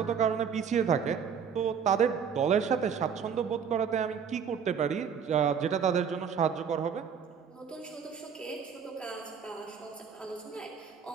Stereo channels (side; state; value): left; quieter; 7.1 dB